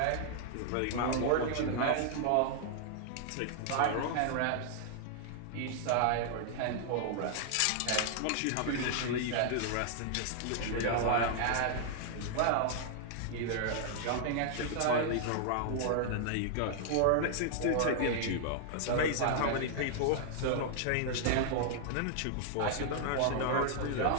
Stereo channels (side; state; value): both; different; correlation -0.01